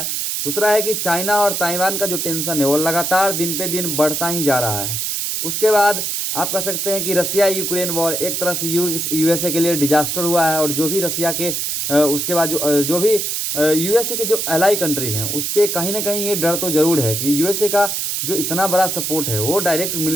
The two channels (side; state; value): right; noise; hiss, 1 dB below the sound